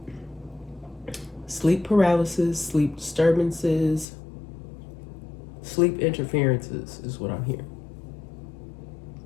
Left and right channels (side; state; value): right; drops out; at 4.0 s